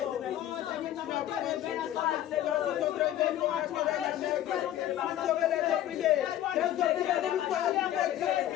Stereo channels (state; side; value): quieter; right; 12.4 dB